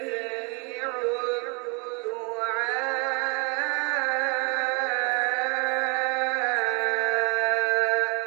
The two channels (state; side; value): quieter; left; 32.7 dB